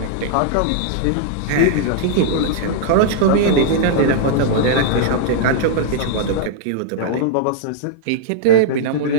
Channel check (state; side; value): different; both; correlation -0.01